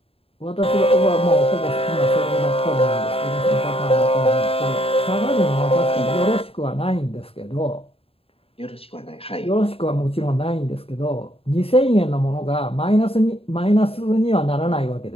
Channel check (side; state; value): right; late; 0.27 ms